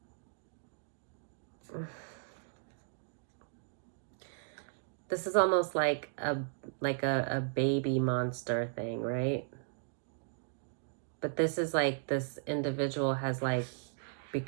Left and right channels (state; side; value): silent; left; digital silence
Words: This is almost like a baby monster thing, right? But this is like this individual has like